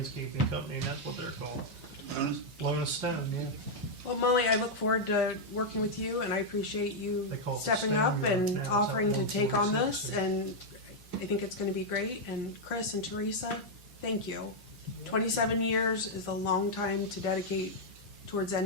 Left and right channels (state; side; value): normal; both; correlation -0.02